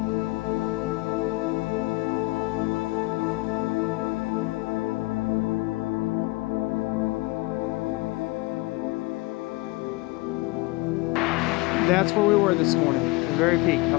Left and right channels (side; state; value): right; quieter; 22.5 dB